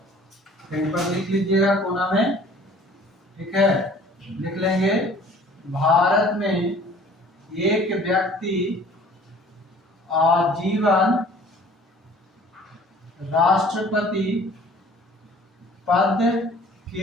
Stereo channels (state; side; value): normal; both; correlation 0.51